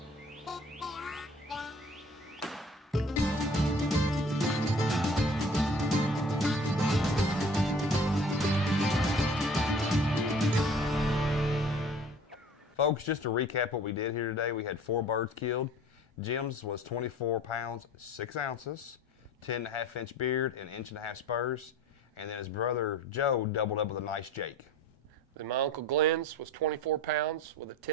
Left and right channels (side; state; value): both; normal; correlation 0.46